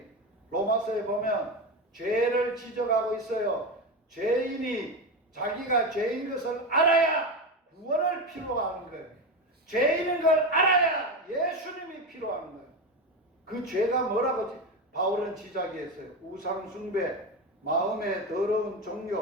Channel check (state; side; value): normal; both; correlation 0.18